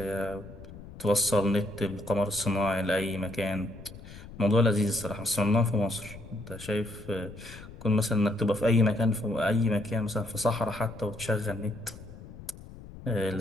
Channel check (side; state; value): left; noise; rumble, 16 dB below the sound